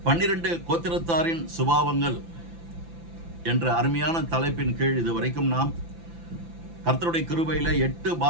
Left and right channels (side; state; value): left; late; 5.9 ms